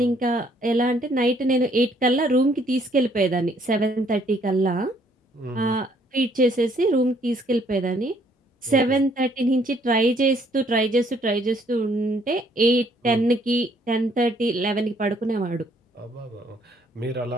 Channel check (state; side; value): normal; both; correlation 0.65